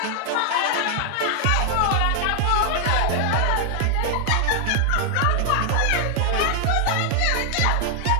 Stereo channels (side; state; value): both; different; correlation 0.00